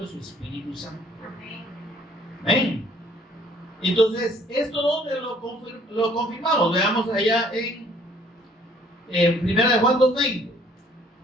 es su Espíritu Santo. Amén. Entonces, ¿esto dónde lo confirmamos? Veamos allá en 1 Juan 2:20.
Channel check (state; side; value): normal; both; correlation 0.59